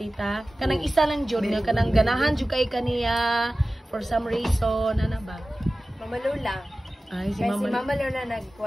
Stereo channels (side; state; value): both; normal; correlation 0.96